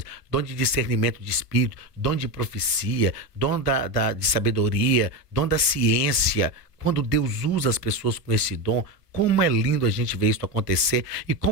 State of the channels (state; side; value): late; right; 1.5 ms